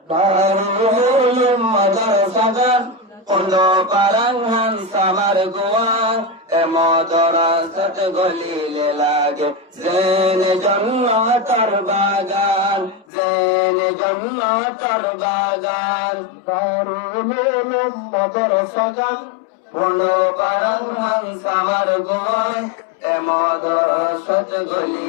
দারুল মাদ্রাসাগান পড়লো পারাঙ্গান সামার গোয়ান মাদ্রাসাত গলিলে লাগে জেনে জন্নতর বাগান জেনে জন্নতর বাগান দারুল মাদ্রাসাগান পড়লো পারাঙ্গান সামার গোয়ান মাদ্রাসাত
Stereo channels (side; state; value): right; drops out; at 13.1 s